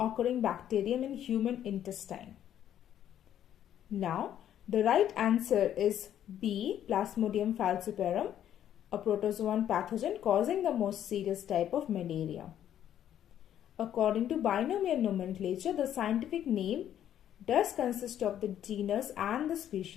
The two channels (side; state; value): right; quieter; 10.6 dB